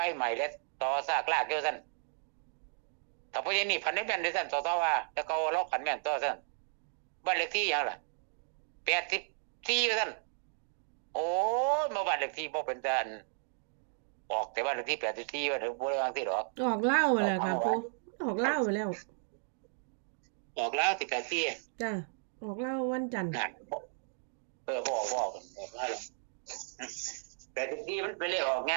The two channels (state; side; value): silent; left; digital silence